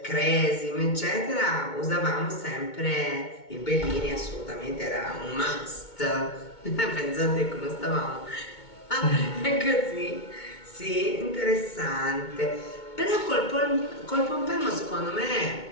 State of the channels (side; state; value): right; late; 2.2 ms